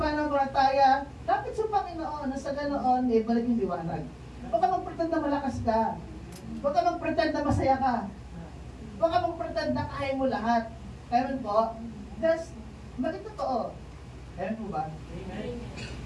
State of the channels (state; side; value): identical; both; correlation 1.00